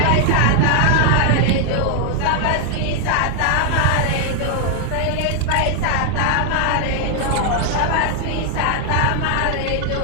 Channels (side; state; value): both; different; correlation 0.00